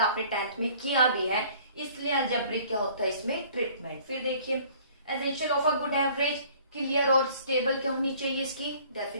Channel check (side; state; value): both; inverted; correlation -0.54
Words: आपने 10th में किया भी है, इसलिए एल्जेब्रिक क्या होता है इसमें, ट्रीटमेंट। फिर देखिए essential of a good average, clear और स्टेबल क्या होनी चाहिए, इसकी